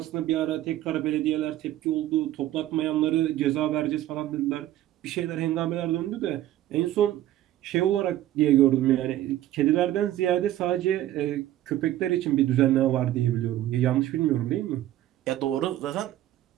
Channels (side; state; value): left; quieter; 13.6 dB